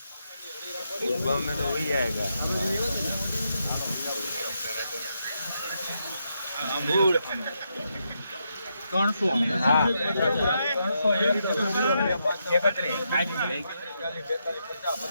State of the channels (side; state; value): both; inverted; correlation -0.82